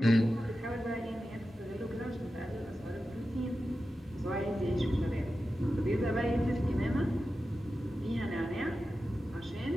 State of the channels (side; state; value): both; normal; correlation 0.92